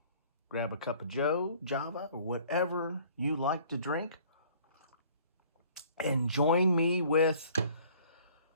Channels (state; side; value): inverted; both; correlation -0.54